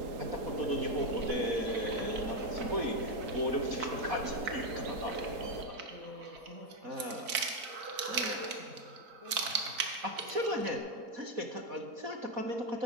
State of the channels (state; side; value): late; left; 4.5 ms